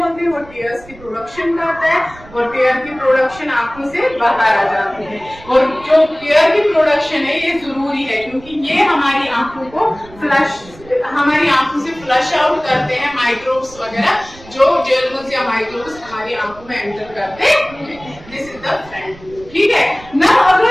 हैं। वो टीयर्स की प्रोडक्शन करता है और टीयर की प्रोडक्शन आंखों से बाहर आ जाती है। और जो टीयर की प्रोडक्शन है ये जरूरी है क्योंकि ये हमारी आंखों को हमारी आंखों से फ्लश आउट करते हैं माइक्रोब्स वगैरह, जो जर्म्स या माइक्रोब्स हमारी आंखों में एंटर करते हैं। This is the front. ठीक है ना?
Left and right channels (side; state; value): right; noise; rumble, 21 dB below the sound